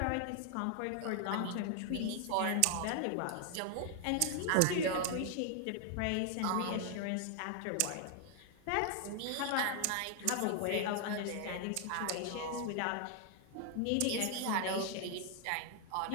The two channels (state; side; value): different; both; correlation 0.00